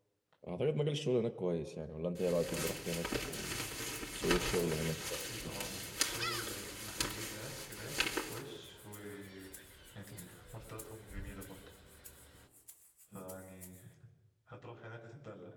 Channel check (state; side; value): identical; both; correlation 1.00